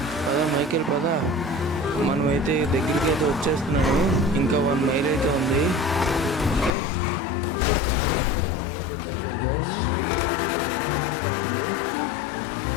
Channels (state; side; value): drops out; right; at 6.7 s